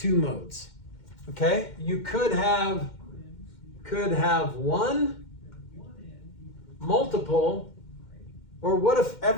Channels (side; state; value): right; late; 2.1 ms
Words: modes. Okay? You could have 1, multiple, or what if